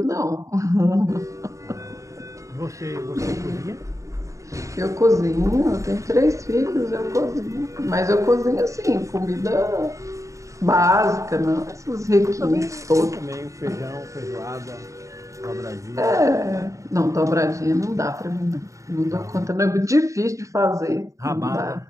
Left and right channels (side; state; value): left; late; 0.15 ms